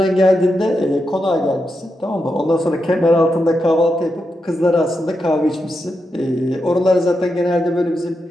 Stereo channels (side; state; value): both; normal; correlation 0.86